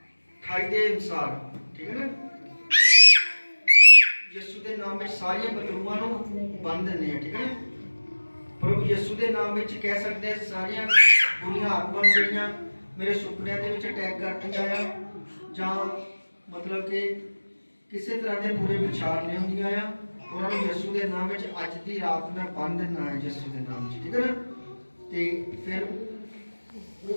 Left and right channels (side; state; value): both; inverted; correlation -1.00